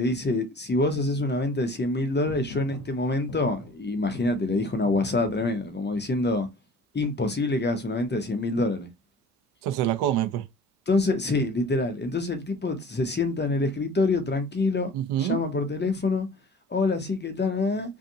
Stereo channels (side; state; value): both; normal; correlation 0.46